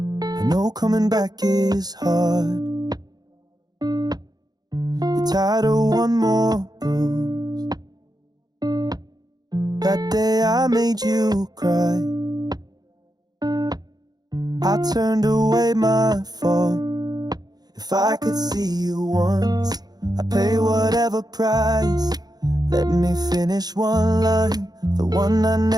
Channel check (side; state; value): left; late; 0.19 ms